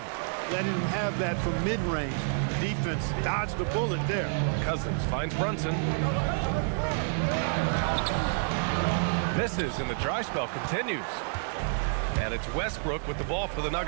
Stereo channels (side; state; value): left; silent; 59 dB below the other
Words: Letting him have that from mid-range. Defense dodged the bullet there. Cousins finds Brunson. Misses, and the dry spell continues. And it's Westbrook with the ball for the